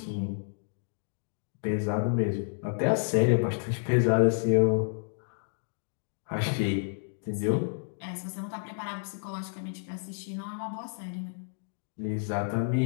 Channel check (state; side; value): silent; right; digital silence